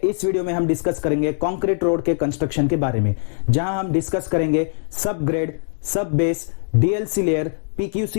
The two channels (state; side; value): silent; right; digital silence